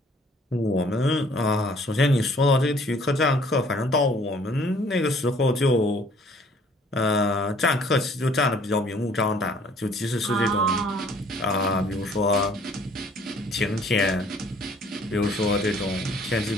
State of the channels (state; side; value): normal; both; correlation 0.58